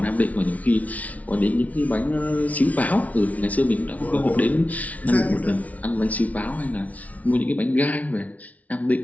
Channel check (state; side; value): late; right; 0.070 ms